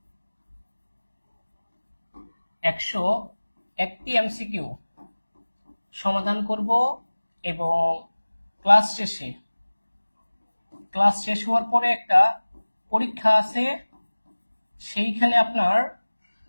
101টি এমসিকিউ সমাধান করব এবং ক্লাস শেষ হওয়ার পরে একটা পরীক্ষা আছে, সেইখানে আপনার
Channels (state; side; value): inverted; both; correlation -1.00